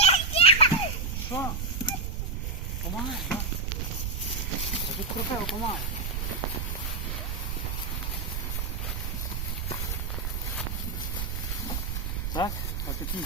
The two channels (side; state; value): right; noise; rumble, 2 dB below the sound